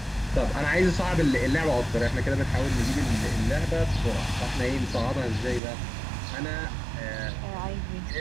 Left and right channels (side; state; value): left; drops out; at 5.6 s